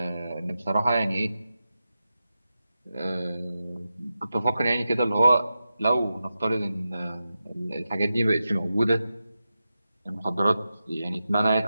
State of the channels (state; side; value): inverted; both; correlation -0.91